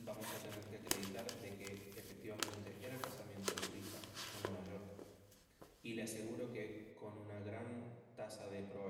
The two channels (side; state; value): both; identical; correlation 1.00